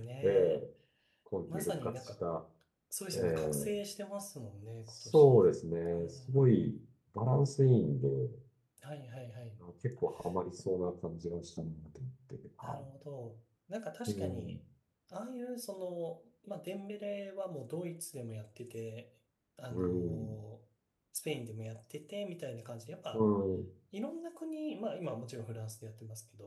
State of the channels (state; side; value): identical; both; correlation 1.00